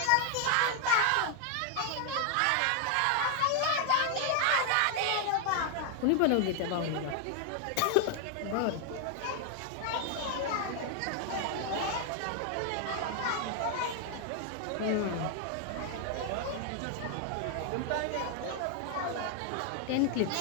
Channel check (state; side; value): different; both; correlation 0.00